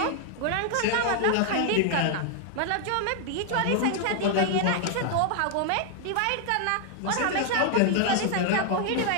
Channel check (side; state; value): both; different; correlation 0.00